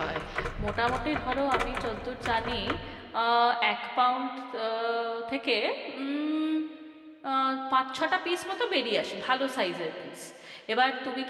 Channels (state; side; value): identical; both; correlation 1.00